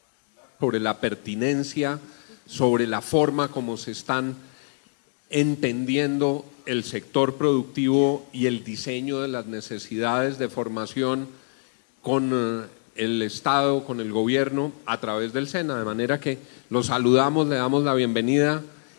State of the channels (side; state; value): right; silent; digital silence